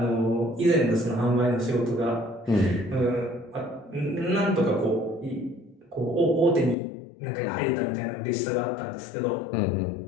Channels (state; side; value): drops out; right; at 6.8 s